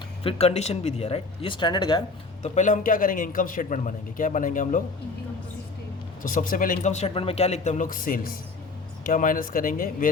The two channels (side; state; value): right; quieter; 3.8 dB